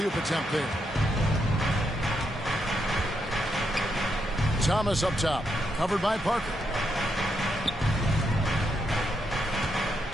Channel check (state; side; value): normal; both; correlation 0.80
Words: attempt there. Thomas up top. Covered by Parker.